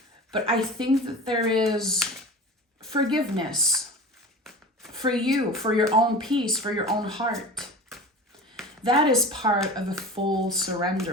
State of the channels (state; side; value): normal; both; correlation 0.34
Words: But I think that there is forgiveness for you, for your own peace, for your own heart. That is part of a full